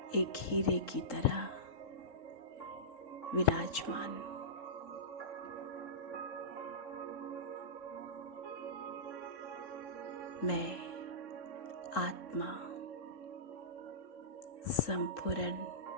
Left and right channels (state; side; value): late; right; 3.8 ms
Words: एक हीरे की तरह विराजमान। मैं आत्मा संपूर्ण